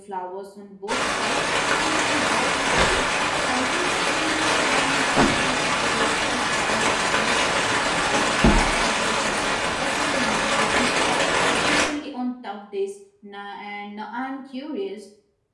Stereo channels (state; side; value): identical; both; correlation 1.00